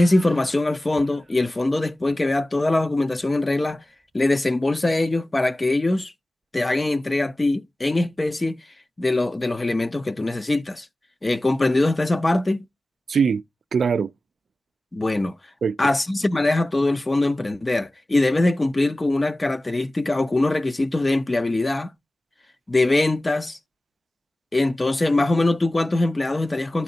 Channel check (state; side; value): normal; both; correlation 0.96